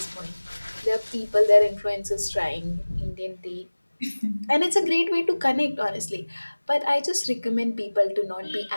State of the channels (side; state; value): both; inverted; correlation -1.00